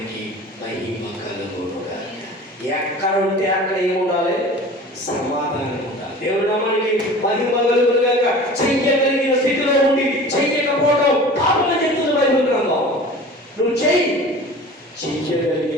మహిమ కలుగునుగాక. ఎక్కడ ఉంటే అక్కడ ఏముండాలి? సమాధానం ఉండాలి. దేవుని నామానికి మహిమ కలుగునుగాక. చెయ్యగలిగిన స్థితిలో ఉండి చెయ్యకపోవడం పాపం చెప్తుంది బైబిల్ గ్రంథం. నువ్వు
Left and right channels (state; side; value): normal; both; correlation 0.40